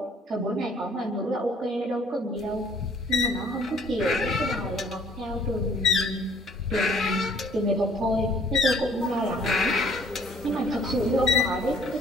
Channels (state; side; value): normal; both; correlation 0.59